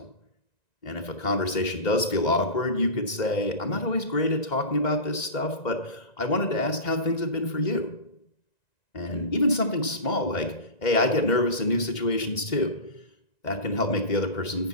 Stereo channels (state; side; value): late; right; 2.1 ms